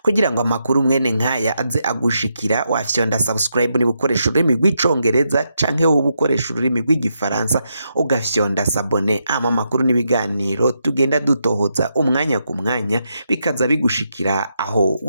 Kugira ngo amakuru mwene nkaya aze agushikira wafyonda subscribe niba ukoresha ururimi rw'icongereza canke wowe ukoresha ururimi rw'igifaransa ugafyonda sabone, amakuru n'ibiganiro tugenda dutohoza umwanya ku mwanya bikaza bigushikira aho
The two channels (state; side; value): inverted; both; correlation -0.82